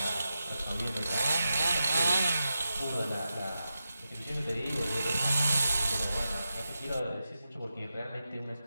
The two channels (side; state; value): both; inverted; correlation -0.90